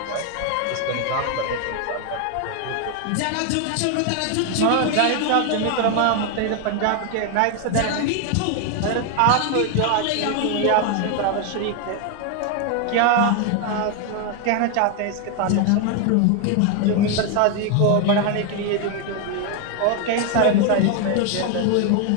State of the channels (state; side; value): different; both; correlation 0.01